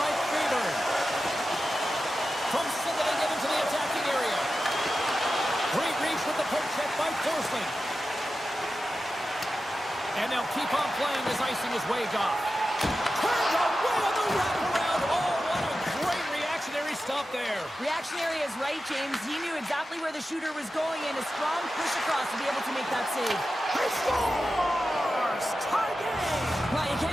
Freeberg. From center they get into the attacking area. Great reach with the poke check by Forsling. And they'll keep on playing as icing is waved off. Turned away on the wraparound. Oh, what a great reactionary stop there. Reactionary is right, James. He knew exactly where the shooter was going, and a strong push across to be able to make that save. He scores! Tie game! Well, you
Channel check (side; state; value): both; normal; correlation 0.92